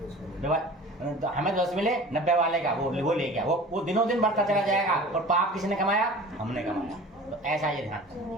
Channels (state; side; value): normal; both; correlation 0.41